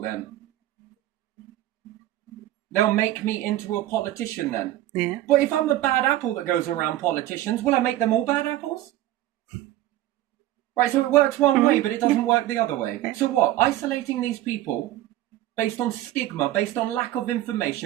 then. They'll make me into a politician then. Yeah. But if I'm a bad apple that goes around politicians, will I make them all bad apples? Right, so it works one way, but it doesn't work the other way. So what? Isolating these people based on stigma, based on lack of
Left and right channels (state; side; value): quieter; left; 14.6 dB